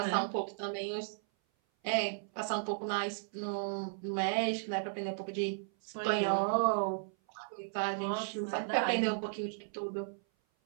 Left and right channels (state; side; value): silent; left; 54 dB below the other